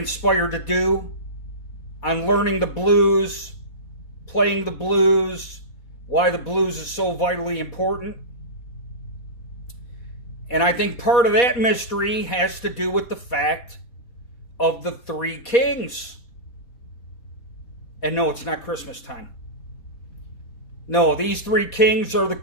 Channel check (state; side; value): late; right; 4.1 ms